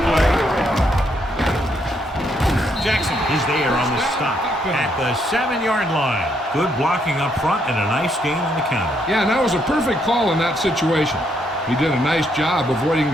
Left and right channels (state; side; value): normal; both; correlation 0.74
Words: play. Jackson is there on the stop at the 7-yard line. Good blocking up front and a nice gain on the counter. Yeah, and that was a perfect call in that situation. He did a nice job avoiding